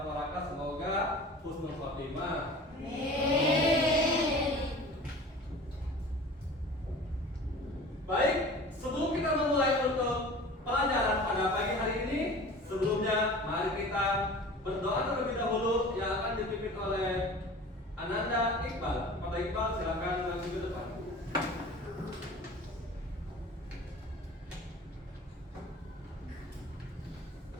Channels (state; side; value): normal; both; correlation 0.40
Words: tua Raka semoga husnul khotimah. Baik, sebelum kita memulai untuk pelajaran pada pagi hari ini, sebelumnya mari kita berdoa terlebih dahulu yang akan dipimpin oleh Ananda Iqbal. Pada Iqbal silakan maju ke depan.